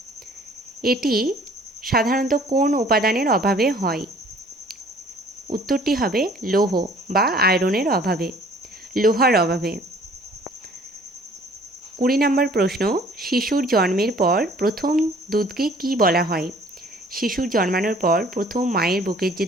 এটি সাধারণত কোন উপাদানের অভাবে হয়? উত্তরটি হবে লৌহ বা আয়রনের অভাবে, লোহার অভাবে। 20 নম্বর প্রশ্ন, শিশুর জন্মের পর প্রথম দুধকে কি বলা হয়? শিশুর জন্মানোর পর প্রথম মায়ের বুকের যে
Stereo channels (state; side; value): normal; both; correlation 0.54